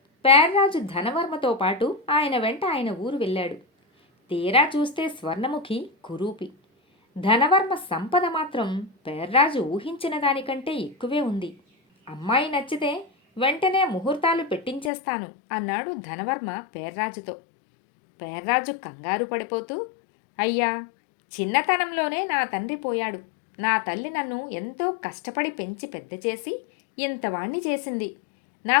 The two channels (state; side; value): drops out; right; at 14.9 s